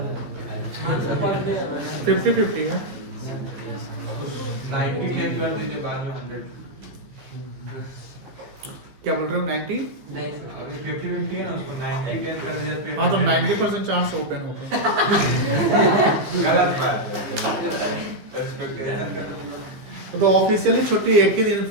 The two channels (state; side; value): late; left; 15 ms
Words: 50-50 है। 90 10 कर दीजिए बाद में 100 क्या बोल रहे हो 90? नहीं अभी 50-50 है ना उसको 90 10 कर दीजिए फिर हाँ तो 90% चांस ओपन होगा। गलत बात है एक्सपेक्टेशन तो ऑफिशियली छुट्टी एक ही दिन